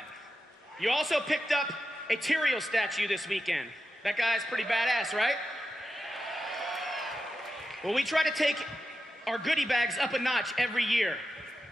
You also picked up a Tyrael statue this weekend. That guy's pretty badass, right? Well, we try to take our goodie bags up a notch every year,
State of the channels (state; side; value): normal; both; correlation 0.90